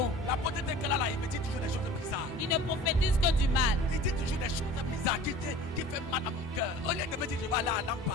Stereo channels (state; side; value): normal; both; correlation 0.43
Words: La potente qu'elle a là, il me dit toujours des choses bizarres. Il ne prophétise que du mal. Il dit toujours des choses bizarres qui fait mal à mon cœur. Au lieu de me dire je vais aller à